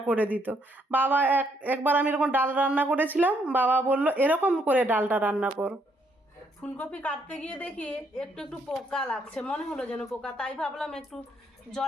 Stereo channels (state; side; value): normal; both; correlation 0.72